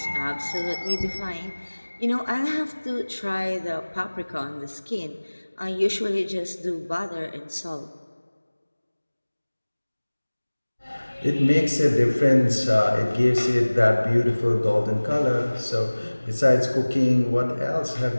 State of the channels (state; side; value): inverted; both; correlation -1.00